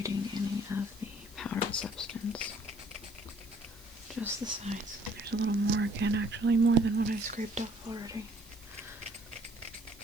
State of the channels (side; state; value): right; noise; hiss, 22 dB below the sound